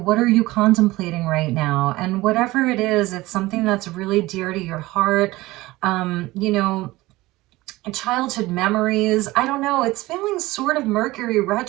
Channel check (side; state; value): left; quieter; 19.2 dB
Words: what are you contemplating right now? And whatever it is, it's something that's really dear to your heart. You know, childhood memories. I don't know. It's feeling sort of Mercury